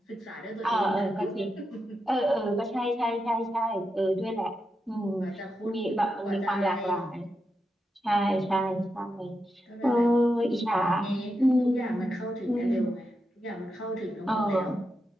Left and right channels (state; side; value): normal; both; correlation 0.86